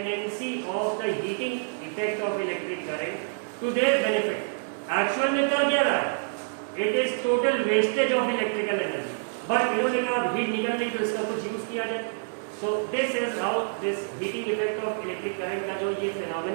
of the heating effect of electric current to their benefit. Actual में कर क्या रहा है, it is total wastage of electrical energy, but इन्होंने कहा हीट निकल रही तो इसका कुछ यूज किया जाए। So this is how this heating effect of electric current का जो ये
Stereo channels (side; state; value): left; silent; 59 dB below the other